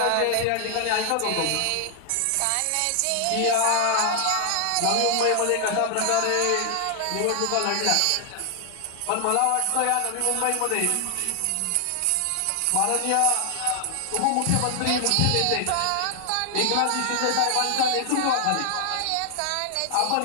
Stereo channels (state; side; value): different; both; correlation 0.00